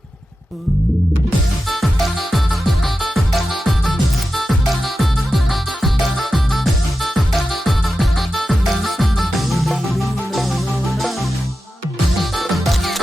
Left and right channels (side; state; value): both; normal; correlation 0.91